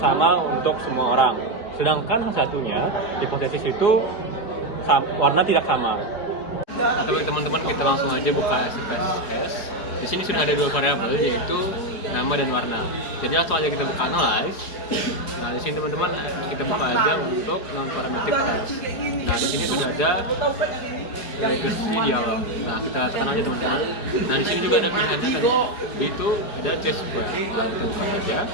untuk semua orang. Sedangkan satunya, hipotesis itu warna tidak sama. Oke teman-teman, kita langsung aja buka SPSS. Di sini sudah ada 2 variabel, yaitu nama dan warna. Jadi langsung aja kita buka analyze. Nah, di sini teman-teman kita buka aja untuk non parametric test. Nah, di sini sudah ada regresi dialog. Nah, kita tekan aja teman-teman. Nah, di sini juga ada pilihannya tadi. Itu ada T-square. Nah, kita buka aja.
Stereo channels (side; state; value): right; late; 4.8 ms